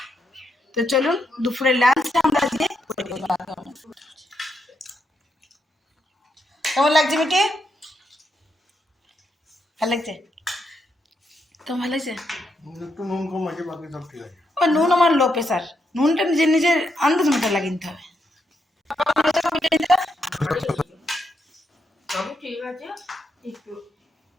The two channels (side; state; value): both; normal; correlation 0.81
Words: তো চলুন দুপুরের লাঞ্চটা আমরা আজকে কেমন লাগছে মিটি? ভালো লাগছে? কেমন ভালো লাগছে? একটু নুন কম আছে, বাকি সব ঠিক আছে। ও নুন আমার লো প্রেশার, নুনটা নিজের নিজের আন্দাজ মতো লাগিয়ে নিতে হবে।